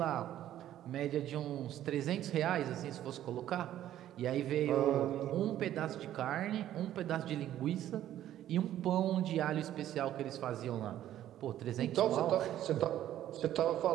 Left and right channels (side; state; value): left; quieter; 12.2 dB